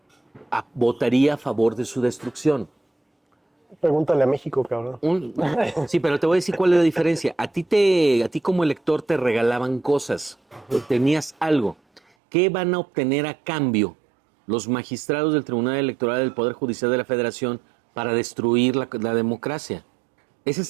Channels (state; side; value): drops out; left; at 12.0 s